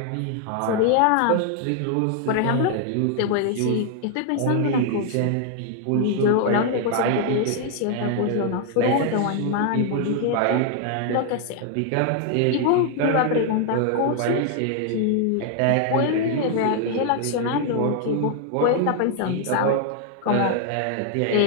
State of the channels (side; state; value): both; different; correlation 0.00